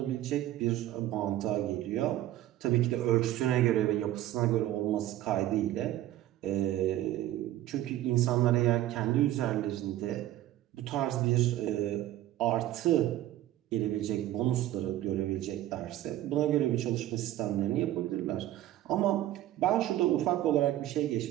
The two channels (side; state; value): left; quieter; 14.0 dB